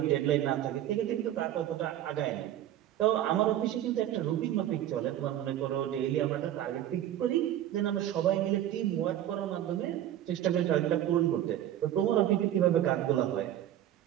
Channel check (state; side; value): quieter; left; 12.0 dB